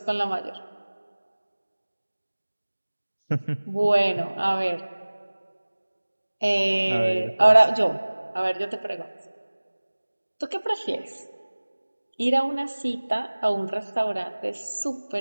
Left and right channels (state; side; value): inverted; both; correlation -1.00